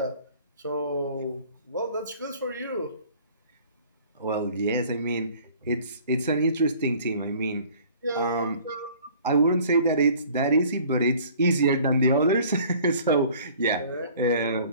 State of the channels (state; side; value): inverted; both; correlation -0.51